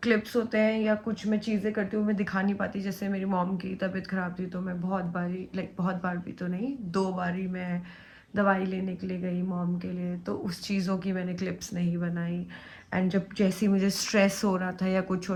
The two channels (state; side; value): identical; both; correlation 1.00